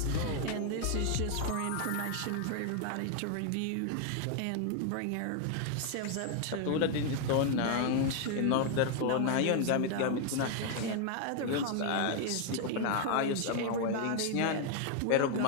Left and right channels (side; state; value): both; different; correlation 0.00